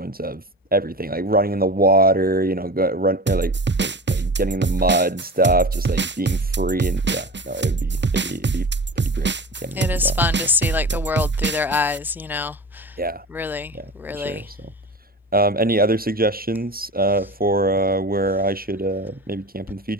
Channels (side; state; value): both; normal; correlation 0.32